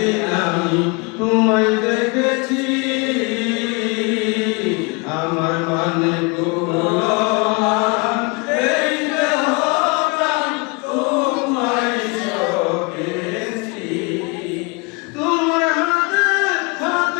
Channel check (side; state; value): right; quieter; 29.9 dB